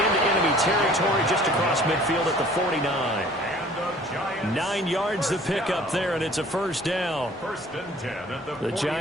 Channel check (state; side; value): normal; both; correlation 0.52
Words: into enemy territory just across midfield at the 49. 9 yards to pick up there, and it's a first down. First and 10 at the